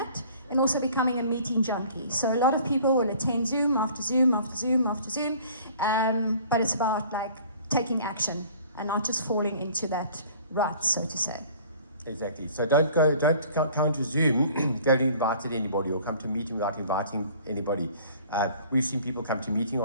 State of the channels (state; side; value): inverted; both; correlation -0.51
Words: and also becoming a meeting junkie. So a lot of people will attend Zoom after Zoom after Zoom after Zoom, but it's about like taking action and not just falling into that rut, so to say. Exactly. So don't come to Zoom if you haven't invited anybody, or come to a meeting without inviting anybody. We've seen people come to meeting